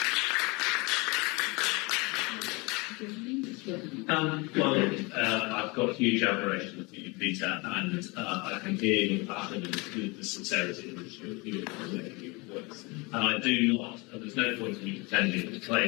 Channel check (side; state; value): right; quieter; 26.9 dB